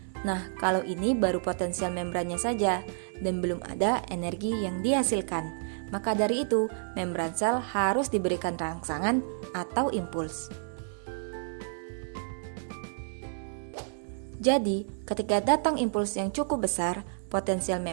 Nah, kalau ini baru potensial membrannya saja dan belum ada energi yang dihasilkan. Maka dari itu, membran sel harus diberikan rangsangan atau impuls. Jadi, ketika datang impuls yang cukup besar, potensial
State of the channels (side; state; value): left; silent; 58 dB below the other